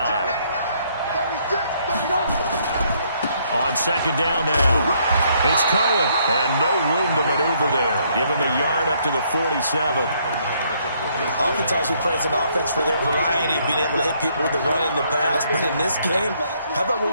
On second down now. It's Cohen. And no room to maneuver there. Give him a yard up to the 47. Oftentimes we praise an offense for their variety of being able to hit people with the run and the pass. But in this game, how about what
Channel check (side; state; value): both; inverted; correlation -0.69